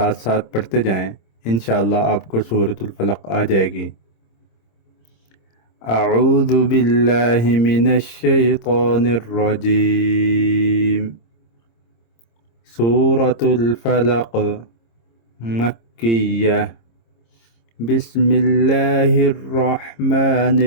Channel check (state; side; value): late; right; 26 ms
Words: ساتھ پڑھتے جائیں، انشاءاللہ آپ کو سورۃ الفلق آ جائے گی۔ اعوذ باللہ من الشیطان الرجیم۔ سورۃ الفلق مکیہ، بسم اللہ الرحمن